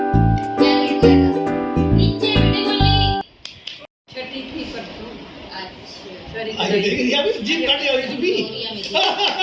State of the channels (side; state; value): both; identical; correlation 1.00